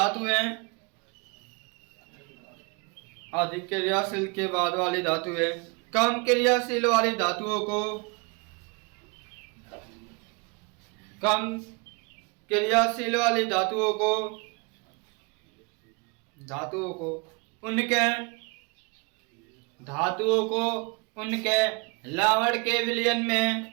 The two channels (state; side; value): quieter; left; 30.4 dB